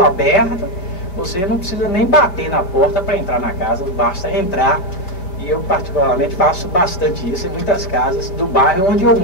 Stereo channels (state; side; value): late; right; 5.2 ms